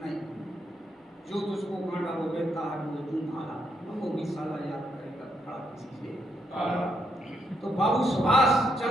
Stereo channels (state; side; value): normal; both; correlation 0.77